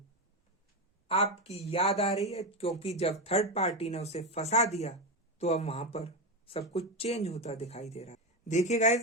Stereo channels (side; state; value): both; normal; correlation 0.13